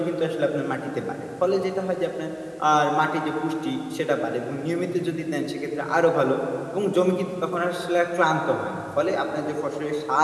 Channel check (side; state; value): both; identical; correlation 1.00